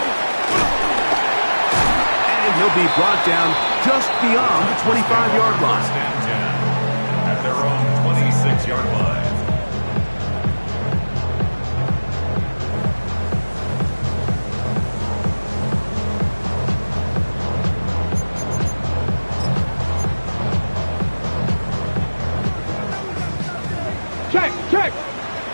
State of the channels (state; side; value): inverted; both; correlation -1.00